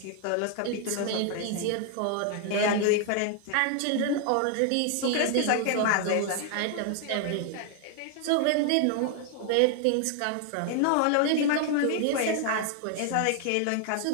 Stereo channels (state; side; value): different; both; correlation 0.00